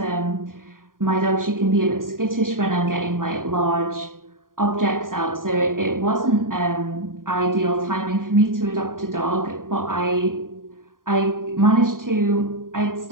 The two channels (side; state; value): left; late; 0.90 ms